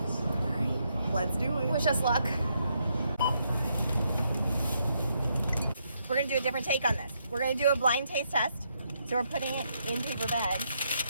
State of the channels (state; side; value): inverted; both; correlation -0.77